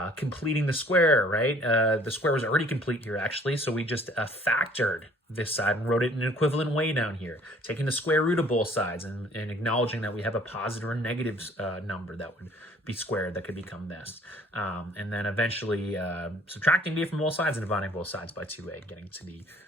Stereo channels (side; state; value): both; normal; correlation 0.56